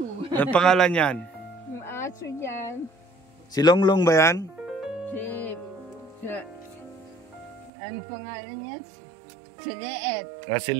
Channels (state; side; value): drops out; left; at 7.7 s